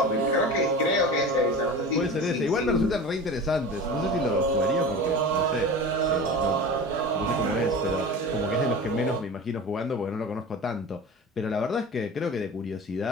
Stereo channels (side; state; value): both; normal; correlation 0.33